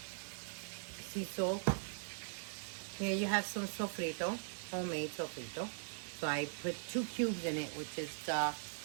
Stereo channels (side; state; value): left; silent; digital silence